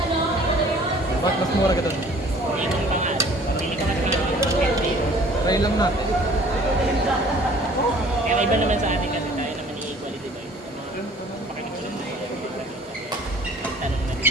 Ba't mas mura ka dun? Hindi kong pangalan. Pamili ka mas pangalan. 150. Try lang natin. Kaya iba naman sa atin kasi tayo naman i-equality ba? Mga pakikulan na yun. Tanong na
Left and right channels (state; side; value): normal; both; correlation 0.52